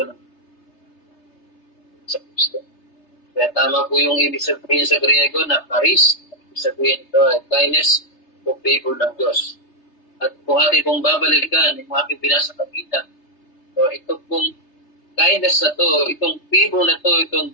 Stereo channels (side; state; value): right; late; 3.3 ms